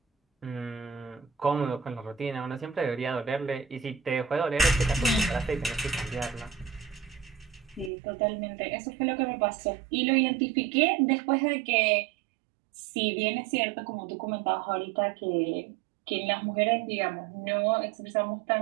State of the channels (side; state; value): left; drops out; at 7.9 s